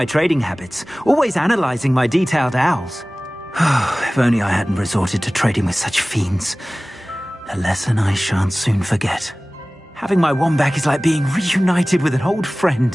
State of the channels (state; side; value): normal; both; correlation 0.98